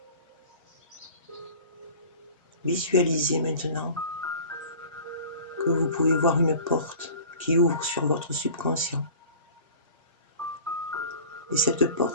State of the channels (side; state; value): both; inverted; correlation -0.41